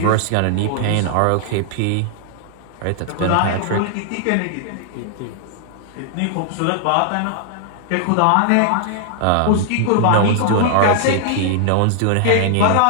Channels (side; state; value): both; different; correlation -0.01